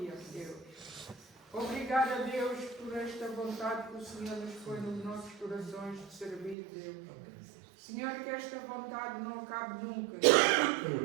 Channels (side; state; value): left; drops out; at 6.6 s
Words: Deus. Obrigada, Deus, por esta vontade que o Senhor nos põe nos nossos corações de servir, Deus. Senhor, que esta vontade não acabe nunca,